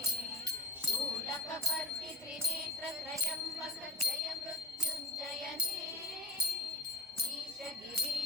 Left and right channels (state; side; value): normal; both; correlation 0.32